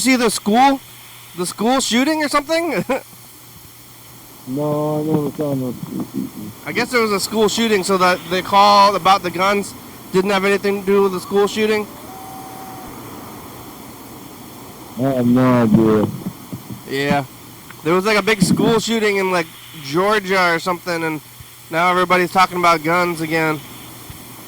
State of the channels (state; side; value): identical; both; correlation 1.00